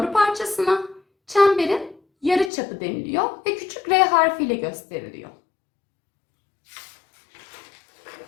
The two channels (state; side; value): drops out; right; at 2.5 s